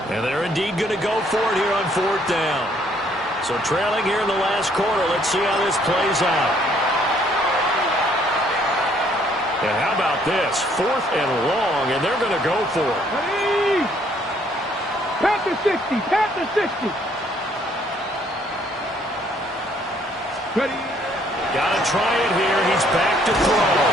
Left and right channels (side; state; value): both; normal; correlation 0.65